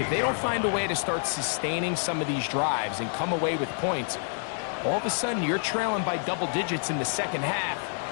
they don't find a way to start sustaining some of these drives and come away with points, all of a sudden you're trailing by double digits in the second half.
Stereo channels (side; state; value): right; silent; 57 dB below the other